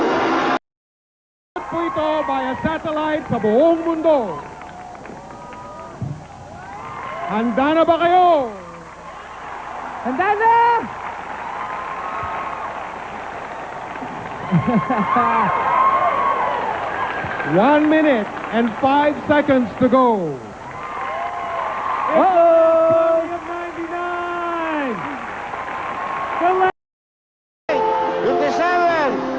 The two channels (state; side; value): identical; both; correlation 1.00